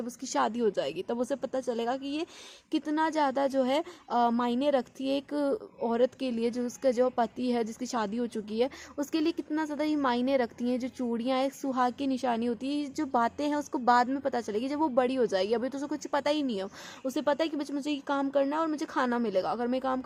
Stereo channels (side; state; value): both; identical; correlation 1.00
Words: उसकी शादी हो जाएगी, तब उसे पता चलेगा कि ये कितना ज़्यादा जो है मायने रखती है एक औरत के लिए, जो उसका जो पति है, जिसकी शादी हो चुकी है, उसके लिए कितना ज़्यादा ये मायने रखती हैं। जो चूड़ियाँ एक सुहाग की निशानी होती है, जो बातें हैं उसको बाद में पता चलेगी, जब वो बड़ी हो जाएगी। अभी तो उसे कुछ पता ही नहीं है। उसे पता है कि बच्चे मुझे ये काम करना है और मुझे खाना मिलेगा, अगर मैं काम